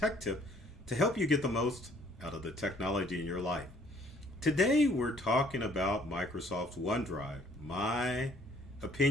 tip to help you get the most out of the technology in your life. Today we're talking about Microsoft's OneDrive. My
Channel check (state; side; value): normal; both; correlation 0.60